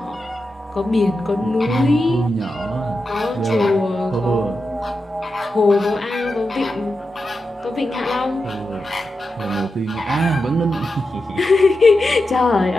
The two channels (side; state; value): both; normal; correlation 0.89